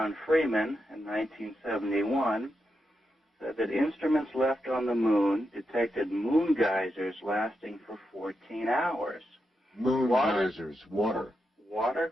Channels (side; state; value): both; normal; correlation 0.86